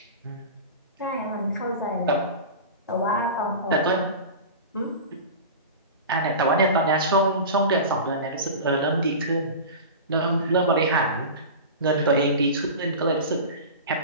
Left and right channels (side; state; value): both; inverted; correlation -0.30